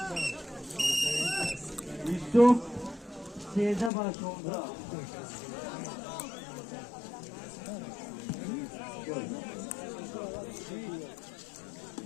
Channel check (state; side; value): drops out; right; at 3.9 s